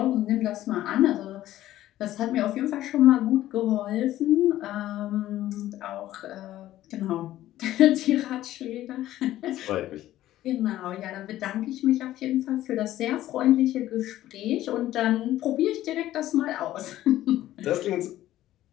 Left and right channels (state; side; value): quieter; right; 14.0 dB